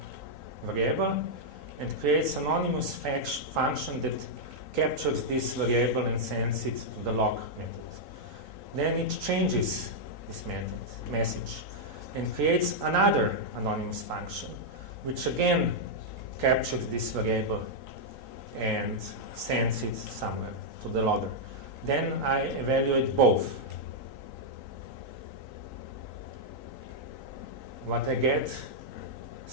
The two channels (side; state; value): right; late; 3.9 ms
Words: variable and creates an anonymous function that captures this variable and sends it to the log method. Then it changes this message and creates another anonymous function which again captures this variable and sends it somewhere to the logger. Then I evaluate both. What I get,